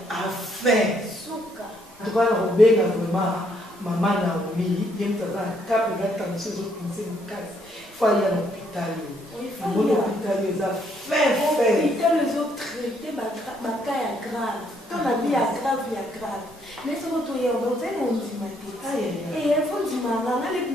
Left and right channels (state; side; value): normal; both; correlation 0.70